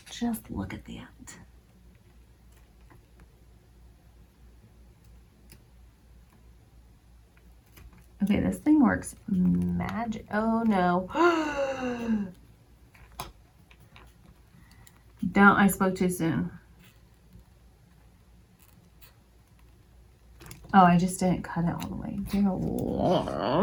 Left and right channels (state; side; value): identical; both; correlation 1.00